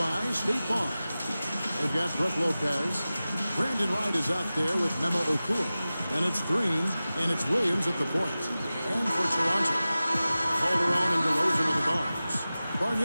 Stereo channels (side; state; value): both; inverted; correlation -0.96